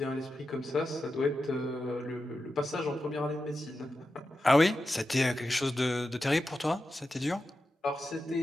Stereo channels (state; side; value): normal; both; correlation 0.91